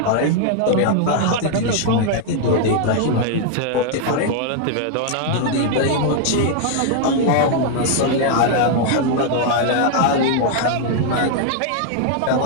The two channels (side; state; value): both; different; correlation 0.00